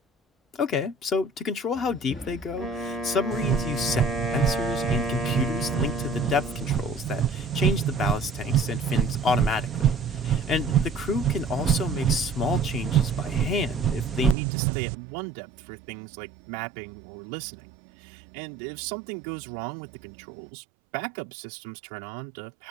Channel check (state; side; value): drops out; left; at 14.4 s